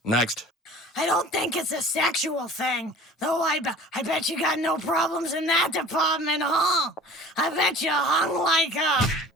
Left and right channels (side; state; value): both; normal; correlation 0.43